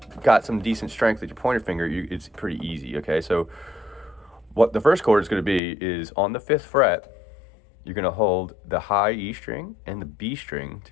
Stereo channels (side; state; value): right; drops out; at 5.6 s